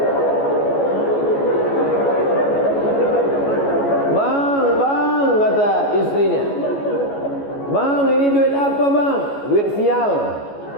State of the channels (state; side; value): late; right; 14 ms